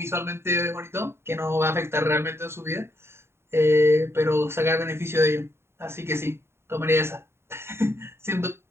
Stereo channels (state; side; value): late; left; 0.12 ms